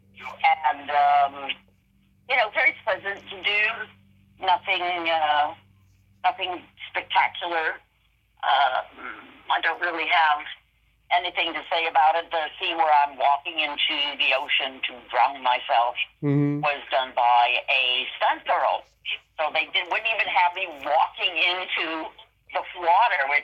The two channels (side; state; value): both; identical; correlation 1.00